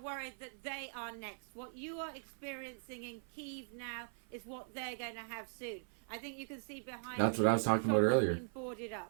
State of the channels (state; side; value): silent; left; 51 dB below the other